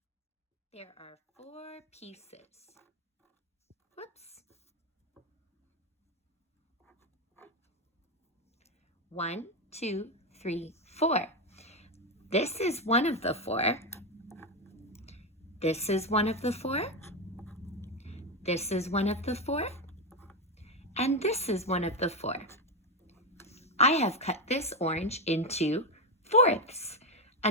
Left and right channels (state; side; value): normal; both; correlation 0.09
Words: There are 4 pieces. Whoops. 1, 2, 3, 4. This is one of the 4. This is one of the 4. This is one of the 4. And this is one of the 4. I have cut this orange into fourths.